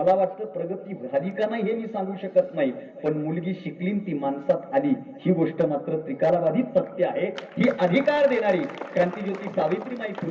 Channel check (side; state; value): both; identical; correlation 1.00